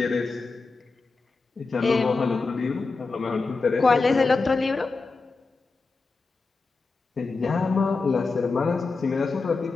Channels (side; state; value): right; quieter; 4.0 dB